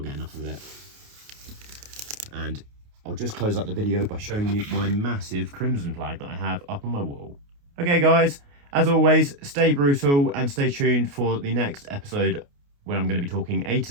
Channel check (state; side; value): late; left; 29 ms